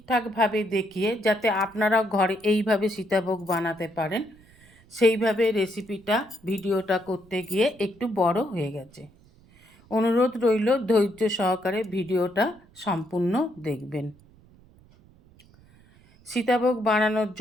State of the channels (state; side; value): noise; right; rumble, 27 dB below the sound